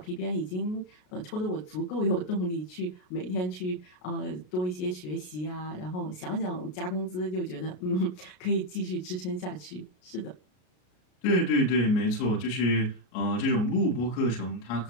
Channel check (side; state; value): right; late; 33 ms